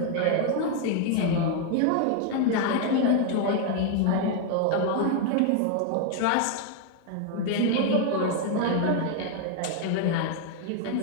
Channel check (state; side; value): different; both; correlation 0.00